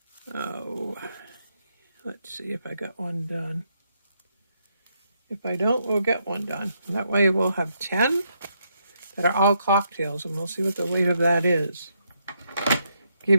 Oh, let's see if I got one done. If I don't, we'll get one done. That way we'll have 10 that are all cocktails, and we'll see what the weight of that is.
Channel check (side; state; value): both; inverted; correlation -0.77